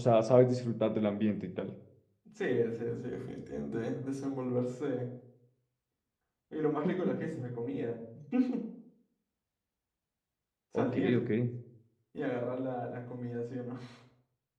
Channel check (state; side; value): identical; both; correlation 1.00